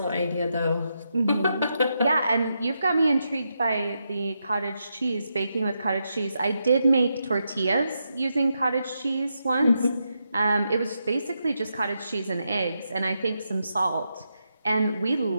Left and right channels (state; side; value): inverted; both; correlation -0.84